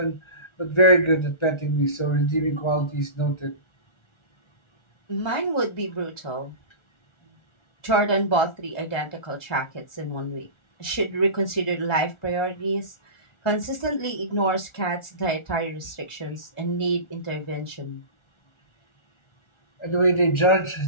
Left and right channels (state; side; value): late; right; 1.4 ms